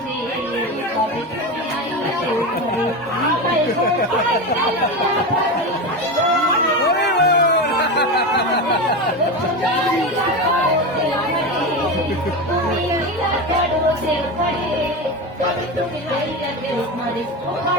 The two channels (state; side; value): normal; both; correlation 0.20